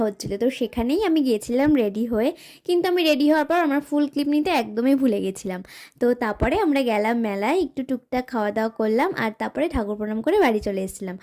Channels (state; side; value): identical; both; correlation 1.00